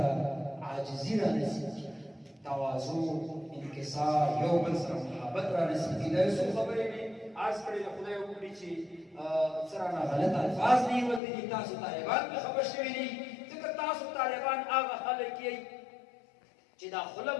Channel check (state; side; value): drops out; right; at 11.2 s